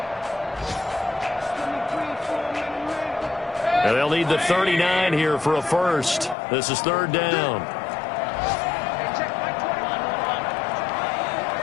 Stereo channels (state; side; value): drops out; right; at 6.4 s